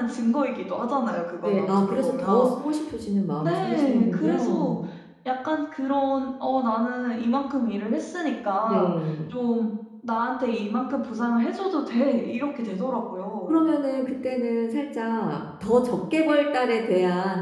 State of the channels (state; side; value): identical; both; correlation 1.00